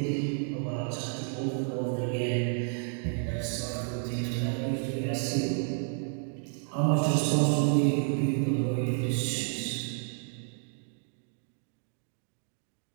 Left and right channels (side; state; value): left; silent; 57 dB below the other